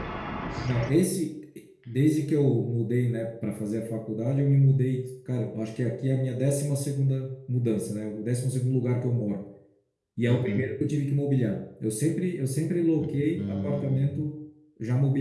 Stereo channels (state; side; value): identical; both; correlation 1.00